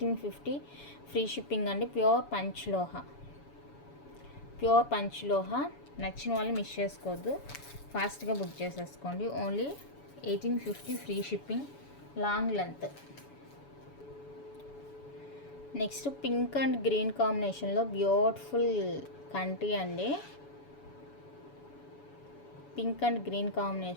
ఫ్రీ షిప్పింగ్ అండి. ప్యూర్ పంచ్లోహా. నచ్చిన వాళ్ళు మిస్ చేసుకోవద్దు, ఫాస్ట్గా బుక్ చేసేసుకోండి. Only 1850 free shipping, long length. Next pink and green కాంబినేషన్లో బ్యూటిఫుల్ కంటి అండి. పింక్ అండ్ గ్రీన్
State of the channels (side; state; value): right; late; 7.0 ms